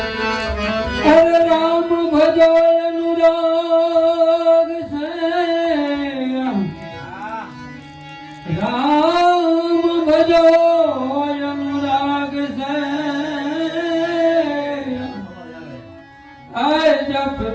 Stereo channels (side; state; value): both; identical; correlation 1.00